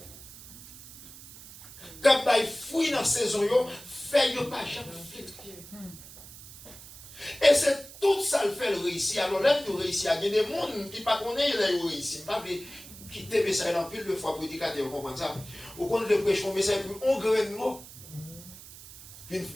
Quand il fouille dans la saison, fait pas jamais fait. Et c'est tout ça le fait le réussir. Alors là, nous réussissons. Il y a des gens qui ne connaissent pas le réussir. Pas quitter le message dans pile de fois pour prédicateur, vous comprenez ça? Ou quand le prêche un message, on graine de mots. Une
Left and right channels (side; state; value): right; noise; hiss, 17 dB below the sound